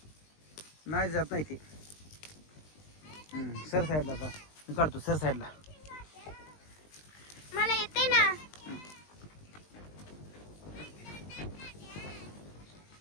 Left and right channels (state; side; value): late; right; 20 ms